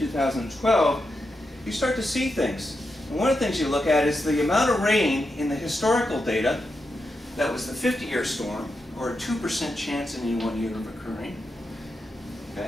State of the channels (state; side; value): normal; both; correlation 0.86